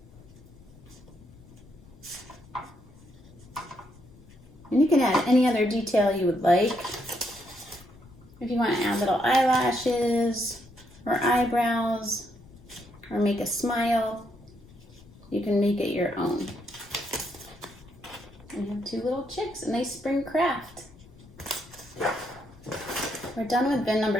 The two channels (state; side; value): noise; left; rumble, 23 dB below the sound